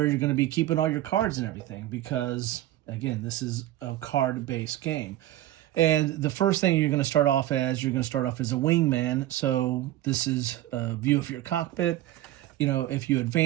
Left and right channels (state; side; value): quieter; left; 14.5 dB